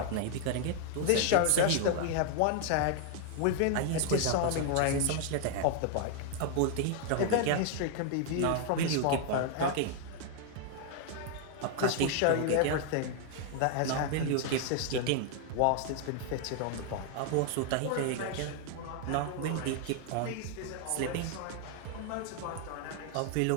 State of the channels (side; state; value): both; different; correlation 0.00